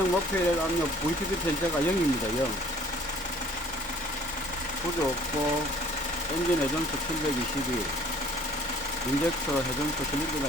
목표일 압력 VPP 편차가 0입니다. 0. 구조 없고 엔진 회전수 722, 인젝터 회전수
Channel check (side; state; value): both; normal; correlation 0.55